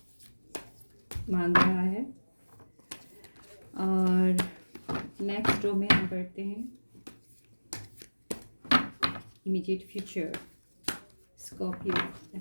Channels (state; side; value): inverted; both; correlation -1.00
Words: मांग रहा है। और नेक्स्ट रो में हम बढ़ते हैं। Immediate future, Scorpio,